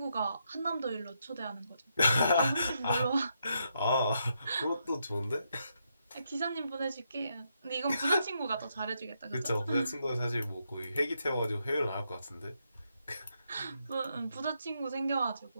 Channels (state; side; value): inverted; both; correlation -0.80